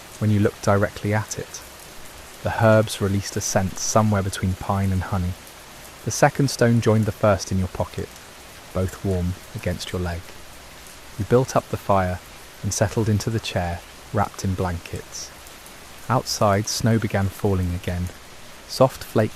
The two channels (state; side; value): identical; both; correlation 1.00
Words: when you looked directly at it. The herbs released a scent somewhere between pine and honey. The second stone joined the first in your pocket, both warm against your leg. You built up the fire and settled into the chair, wrapped in blankets. Outside, snow began falling again, soft